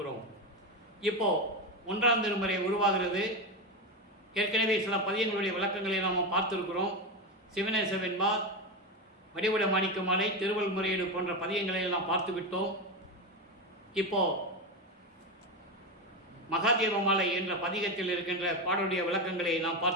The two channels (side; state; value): both; normal; correlation 0.15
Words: இப்போ 1ஆம் திருமுறை உருவாகிறது. ஏற்கனவே சில பதியங்களுடைய விளக்கங்களை நாம் பார்த்திருக்கிறோம். சிவனேச வெண்பா, வடிவுட மாணிக்க மாலை, திருவள் முறையீடு போன்ற பதியங்களை நாம் பார்த்து விட்டோம். இப்போ மகாதேவ மாலை என்ற பதிகத்தில் இருக்கின்ற பாடலுடைய விளக்கங்களை நாம்